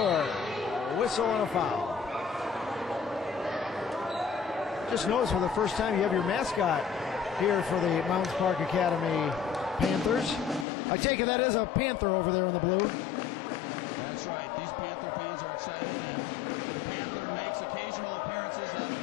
whistle and a foul. Just noticed for the first time you have your mascot here for the Mounds Park Academy Panthers. I take it that is a Panther over there in the blue. That's right. These Panther fans are excited, and the Panther makes occasional appearances at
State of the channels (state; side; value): drops out; right; at 10.7 s